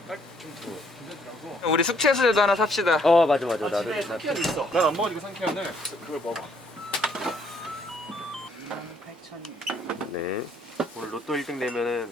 좀 괜찮더라고. 우리 숙취해소제도 하나 삽시다. 맞아 나도 집에 상쾌한 있어. 난 안 먹으니까 상쾌한을 그걸 먹어. 네 오늘 로또 1등 되면은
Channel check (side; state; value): both; normal; correlation 0.66